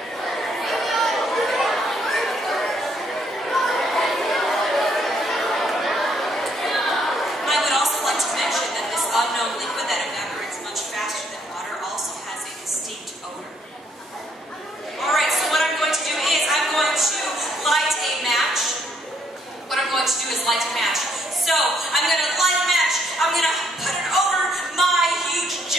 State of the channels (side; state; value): both; normal; correlation 0.70